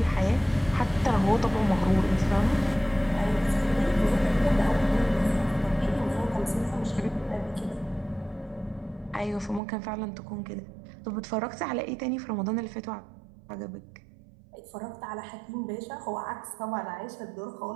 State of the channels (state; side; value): drops out; left; at 9.6 s